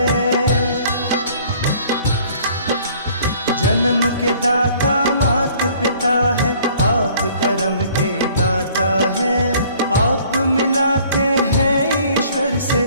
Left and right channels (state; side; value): inverted; both; correlation -0.56